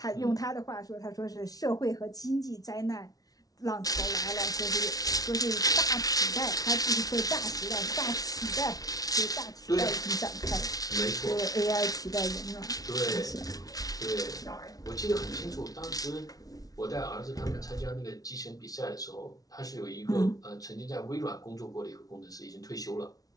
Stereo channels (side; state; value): right; late; 0.18 ms